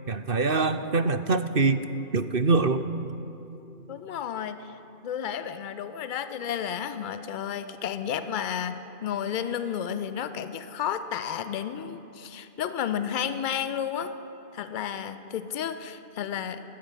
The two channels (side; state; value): left; late; 2.3 ms